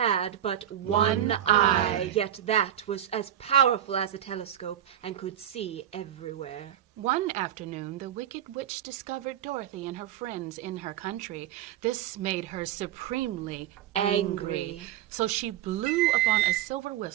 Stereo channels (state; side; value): quieter; left; 11.3 dB